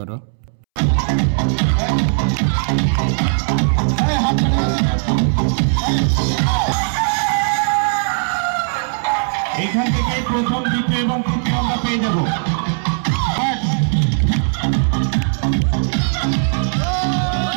এখান থেকে প্রথম, দ্বিতীয় এবং তৃতীয় আমরা পেয়ে যাবো।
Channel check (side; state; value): left; silent; 67 dB below the other